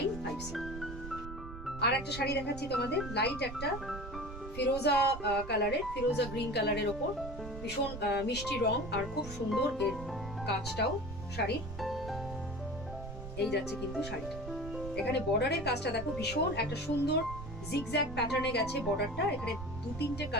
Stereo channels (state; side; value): noise; right; rumble, 10 dB below the sound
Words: আর একটা শাড়ি দেখাচ্ছি তোমাদের, লাইট একটা ফিরোজা কালারের, ফিরোজা গ্রিন কালারের ওপর, ভীষণ মিষ্টি রং আর খুব সুন্দর এর কাজটাও শাড়ি। এই যাচ্ছে কিন্তু শাড়িটা, এখানে বর্ডারের কাজটা দেখো ভীষণ একটা সুন্দর জিগজ্যাগ প্যাটার্নে গেছে বর্ডারটা। এখানে 2-3টে